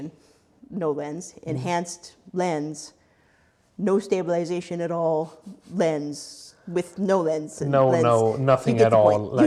no lens, enhanced lens, no stabilization at all, lens, with no lens. And No, lens. no, nothing You get at the all. point. Like, You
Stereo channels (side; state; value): both; identical; correlation 1.00